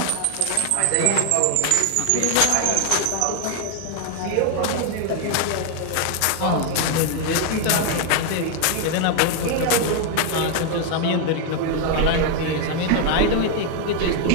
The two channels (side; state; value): both; different; correlation 0.01